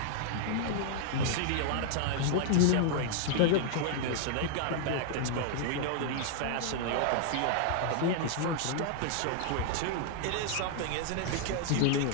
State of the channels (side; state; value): both; different; correlation 0.00